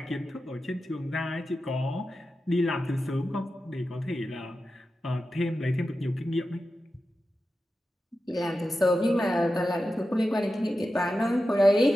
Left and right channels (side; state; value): both; normal; correlation 0.92